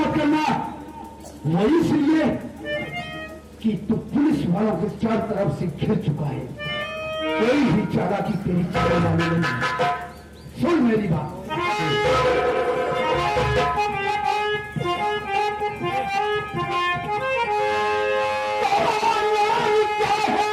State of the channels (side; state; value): both; identical; correlation 1.00